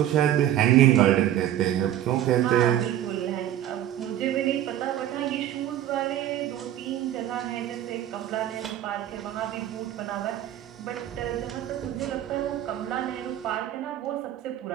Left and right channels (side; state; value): left; quieter; 12.0 dB